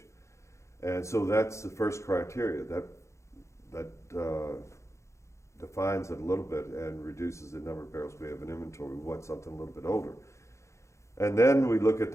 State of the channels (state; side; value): late; right; 0.14 ms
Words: And so that's the first criteria that defines it a little bit and reduces the number of barrels we have in inventory. We want something a little bit older. And then we look at